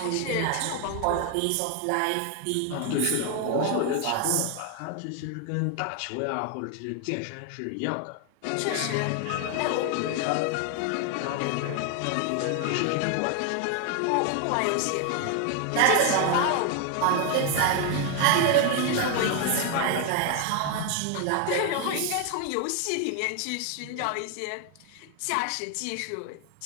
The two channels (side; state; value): both; different; correlation 0.01